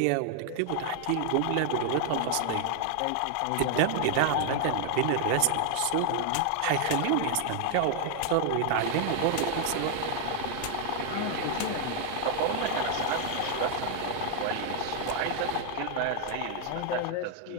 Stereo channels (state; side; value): different; both; correlation 0.00